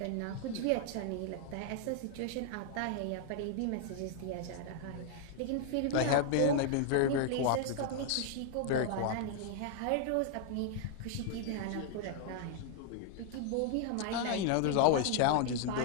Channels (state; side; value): different; both; correlation 0.00